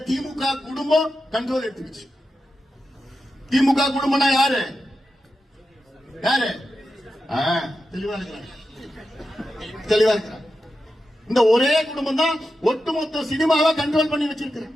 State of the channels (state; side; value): normal; both; correlation 0.90